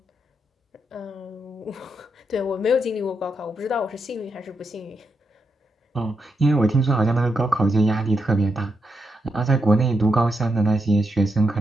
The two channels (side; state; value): both; normal; correlation 0.83